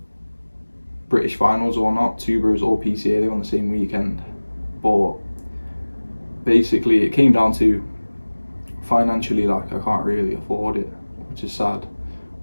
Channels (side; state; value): both; inverted; correlation -1.00